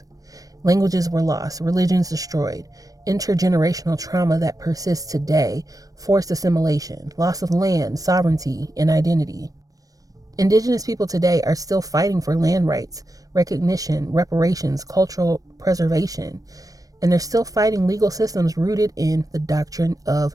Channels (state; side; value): late; left; 0.17 ms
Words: Languages were lost, religions destroyed, intergenerational trauma that persists today, forced assimilation, loss of land, sovereignty, and identity. Indigenous people today are still fighting for land rights, recognition, reparations, cultural preservation, and they're still fighting legal systems rooted in the doctrine